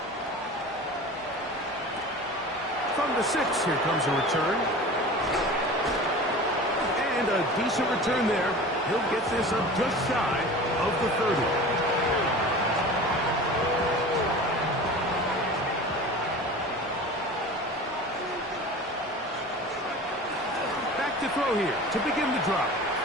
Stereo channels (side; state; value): both; normal; correlation 0.37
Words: From the 6, here comes a return. And a decent return there. He'll get this up just shy of the 30. Back to throw here to begin the drop.